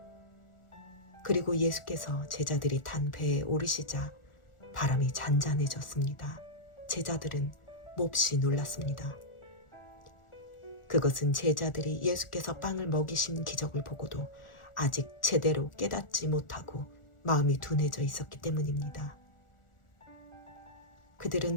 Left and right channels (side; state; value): right; late; 1.4 ms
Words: 그리고 예수께서 제자들이 탄 배에 오르시자 바람이 잔잔해졌습니다. 제자들은 몹시 놀랐습니다. 그것은 제자들이 예수께서 빵을 먹이신 기적을 보고도 아직 제대로 깨닫지 못하고 마음이 둔해져 있었기 때문입니다.